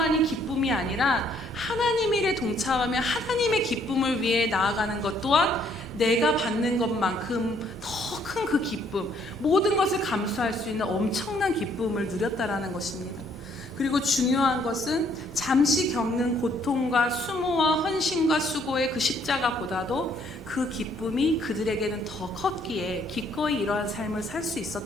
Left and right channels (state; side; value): normal; both; correlation 0.66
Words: 기쁨이 아니라 하나님 일에 동참하며 하나님의 기쁨을 위해 나아가는 것 또한 내가 받는 것만큼 더 큰 그 기쁨, 모든 것을 감수할 수 있는 엄청난 기쁨을 누렸다라는 것입니다. 그리고 중요한 것은 잠시 겪는 고통과 수모와 헌신과 수고의 그 십자가보다도 그 기쁨이 그들에게는 더 컸기에 기꺼이 이러한 삶을 살 수